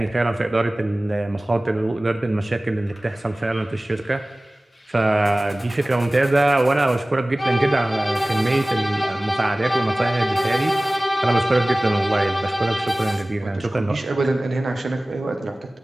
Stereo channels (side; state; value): both; normal; correlation 0.98